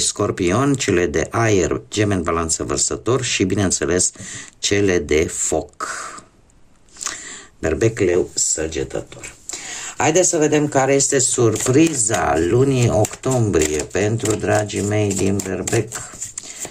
scorpion, cele de aer, gemeni, balanță, vărsător și, bineînțeles, cele de foc, berbec, leu, săgetător. Haideți să vedem care este surpriza lunii octombrie pentru dragii mei din berbec.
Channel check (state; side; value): identical; both; correlation 1.00